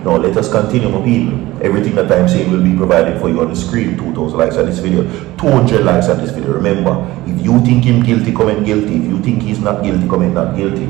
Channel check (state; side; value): quieter; left; 17.9 dB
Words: Now let us continue, my people. Everything that I'm saying will be provided for you on the screen. 2,000 likes on this video, 200 likes on this video. Remember, if you think him guilty, comment guilty. If you think he's not guilty, comment not guilty.